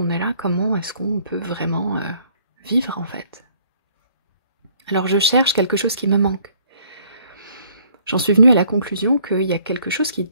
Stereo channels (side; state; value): both; inverted; correlation -0.61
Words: est là, comment est-ce qu'on peut vraiment vivre en fait? Alors je cherche quelque chose qui me manque. J'en suis venue à la conclusion qu'il y a quelque chose qui